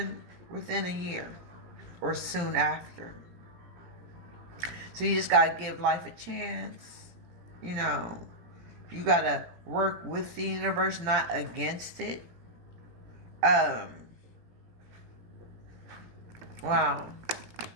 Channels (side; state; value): left; late; 17 ms